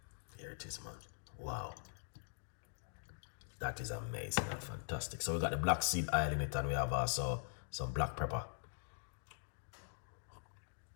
Here it is, man. Wow. That is amazing and fantastic. So we got the black seed oil in it, and we have also some black pepper.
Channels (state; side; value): silent; right; digital silence